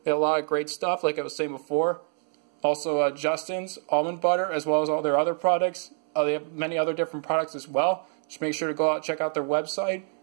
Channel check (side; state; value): left; silent; 61 dB below the other